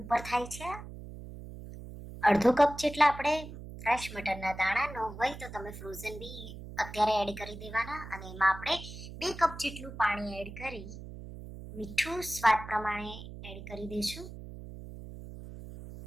ઉપર થાય છે. અડધો કપ જેટલા આપણે ફ્રેશ મટરના દાણા ન હોય તો તમે ફ્રોઝન બી અત્યારે એડ કરી દેવાના. અને એમાં આપણે 2 કપ જેટલું પાણી એડ કરી મીઠું સ્વાદ પ્રમાણે એડ કરી દઈશું.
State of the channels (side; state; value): right; noise; hum, 12 dB below the sound